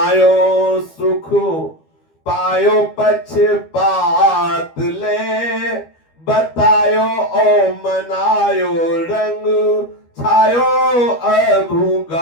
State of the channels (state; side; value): late; right; 12 ms